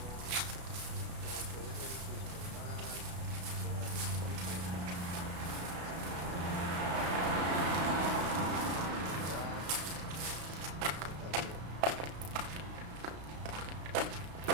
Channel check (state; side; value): late; left; 33 ms